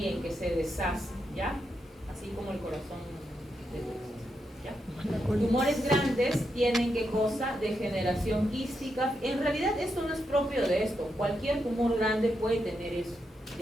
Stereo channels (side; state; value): both; normal; correlation 0.83